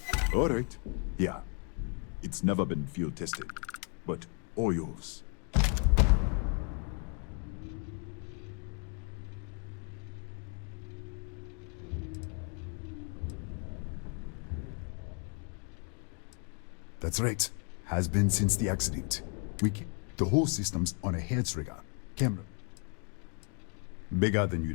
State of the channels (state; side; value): quieter; right; 40.0 dB